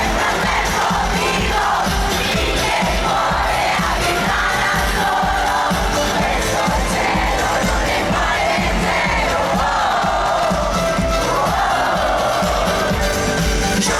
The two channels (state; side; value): identical; both; correlation 1.00